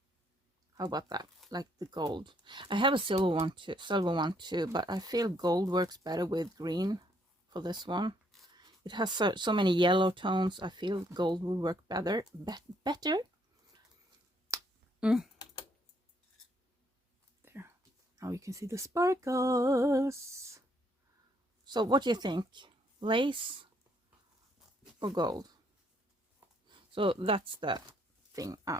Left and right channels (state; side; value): normal; both; correlation 0.69